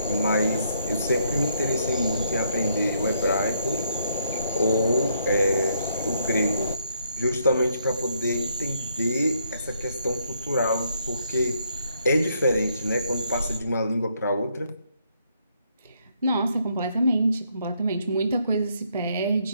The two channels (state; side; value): inverted; both; correlation -0.73